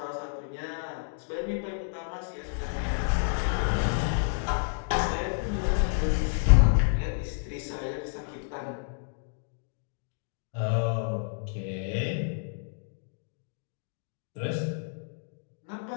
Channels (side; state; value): right; silent; digital silence